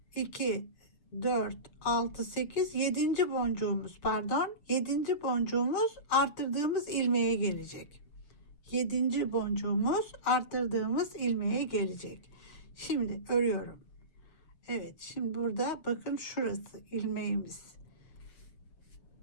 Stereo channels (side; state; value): right; late; 7.4 ms